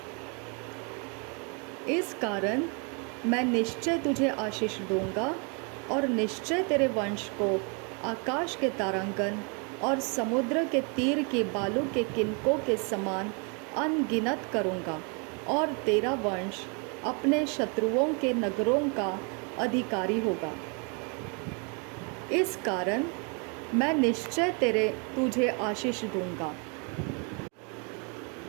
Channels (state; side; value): quieter; left; 35.3 dB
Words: इस कारण मैं निश्चय तुझे आशीष दूंगा और निश्चय तेरे वंश को आकाश के तारांगन और समुद्र के तीर के बालू के किनकों के समान अनगिनत करूँगा, और तेरा वंश अपने शत्रुओं के नगरों का अधिकारी होगा। इस कारण मैं निश्चय तुझे आशीष दूंगा